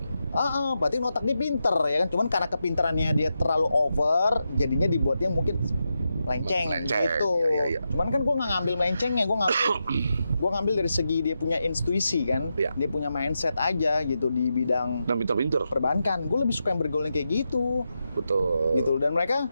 Berarti otak dia pinter ya kan. Cuman karena kepintarannya dia terlalu over, jadinya dibuatnya mungkin melenceng gitu. Iya. Cuman kan gue nggak ngambil melencengnya, gue ngambil dari segi dia punya intuisi kan. Iya. Dia punya mindset aja gitu di bidang Dan pinter-pinter. perbankan. Gue lebih suka yang bergaul yang kayak gitu. Betul. Gitu. Dan mereka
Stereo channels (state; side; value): inverted; both; correlation -0.87